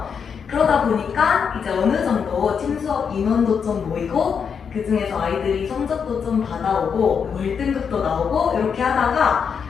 그러다 보니까 이제 어느 정도 팀 수업 인원도 좀 모이고, 그 중에서 아이들이 성적도 좀 받아오고 월등급도 나오고 이렇게 하다가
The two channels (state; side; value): quieter; right; 6.6 dB